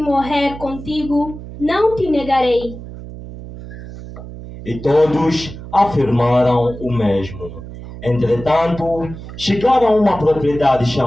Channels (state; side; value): noise; right; hum, 13 dB below the sound